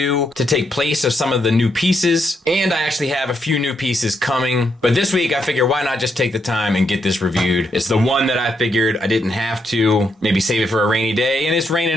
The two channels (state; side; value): normal; both; correlation 0.78